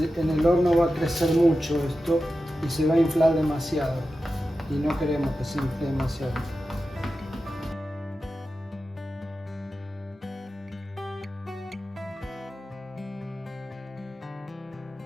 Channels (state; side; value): normal; both; correlation 0.92